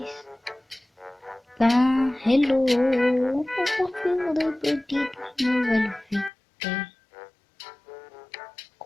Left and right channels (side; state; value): right; drops out; at 6.3 s